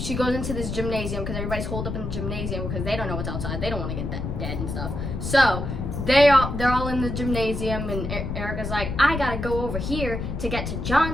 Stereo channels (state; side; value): noise; left; rumble, 4 dB below the sound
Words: this gymnasium because everybody's holed up in the gymnasium because they don't know what's outside. They don't want to get dead and stuff. So they're all in the gymnasium, and Erica's like, I gotta go over here to get to